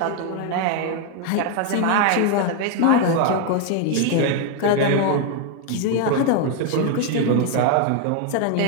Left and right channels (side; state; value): both; different; correlation 0.01